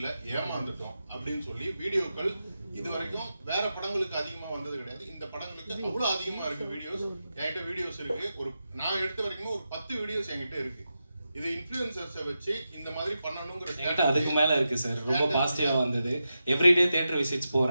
ஏமாந்துட்டோம் அப்படின்னு சொல்லி வீடியோக்கள் இது வரைக்கும் வேற படங்களுக்கு அதிகமா வந்தது கிடையாது. இந்த படங்களுக்கு அவ்வளவு அதிகமா இருக்கு வீடியோஸ். என்கிட்ட வீடியோஸ் இருக்கு. நான் எடுத்த வரைக்கும் ஒரு 10 வீடியோஸ் என்கிட்ட இருக்கு. இது இன்ஃப்ளூயன்சர்ஸை வச்சு இந்த மாதிரி பண்ணணுங்கிற அதுக்கு மேல இருக்கு சார். ரொம்ப பாசிட்டிவா வந்தது. எவ்ரிடே தியேட்டர் விசிட்ஸ்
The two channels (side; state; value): both; inverted; correlation -0.89